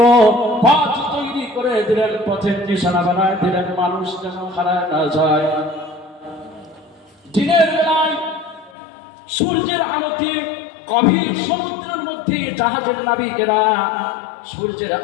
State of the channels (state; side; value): drops out; right; at 8.7 s